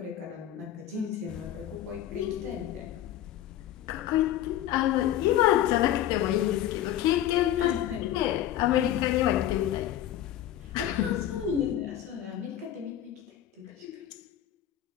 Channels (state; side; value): quieter; right; 12.0 dB